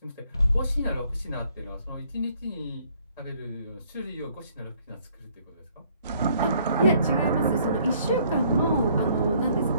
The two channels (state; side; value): inverted; both; correlation -0.64